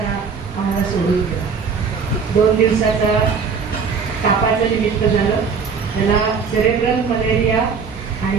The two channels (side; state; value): left; quieter; 5.7 dB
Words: आम्हाला सोडून गेला. 2 दिवसाचा तापाचं निमित्त झालं. त्याला सेरेब्रल मलेरिया